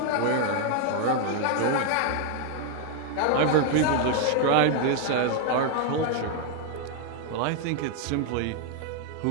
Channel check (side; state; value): both; different; correlation 0.00